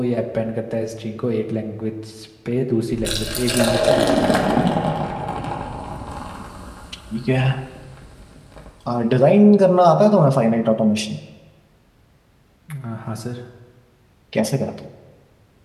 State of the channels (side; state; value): both; identical; correlation 1.00